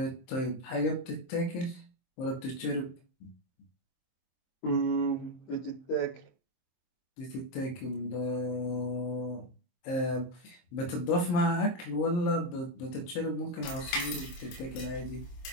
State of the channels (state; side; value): late; right; 23 ms